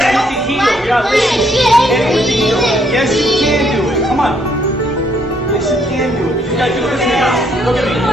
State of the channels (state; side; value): normal; both; correlation 0.70